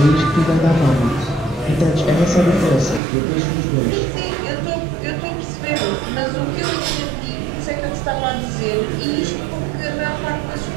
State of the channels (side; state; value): left; drops out; at 3.0 s